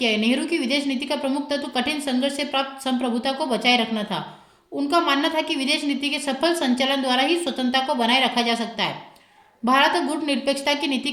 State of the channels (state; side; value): identical; both; correlation 1.00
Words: है। नेहरू की विदेश नीति का प्रमुख तत्व कठिन संघर्ष से प्राप्त संप्रभुता को बचाए रखना था। उनका मानना था कि विदेश नीति के सफल संचालन द्वारा ही स्वतंत्रता को बनाए रखा जा सकता है। भारत गुट निरपेक्षता की नीति